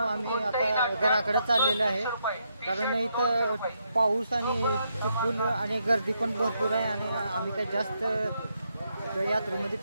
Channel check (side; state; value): both; inverted; correlation -0.79